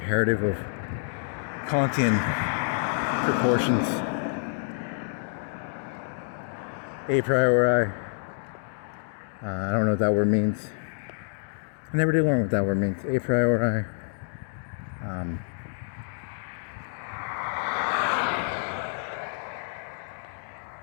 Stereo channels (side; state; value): right; silent; digital silence